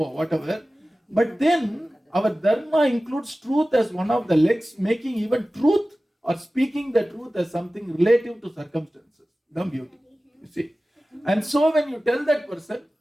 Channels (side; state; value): both; normal; correlation 0.96